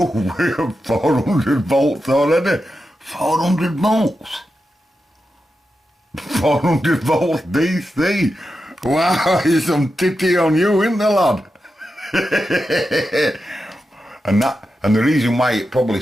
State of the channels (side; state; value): both; normal; correlation 0.89